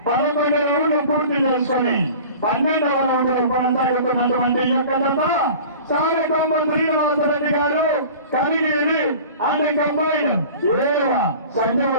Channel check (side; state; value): both; inverted; correlation -0.41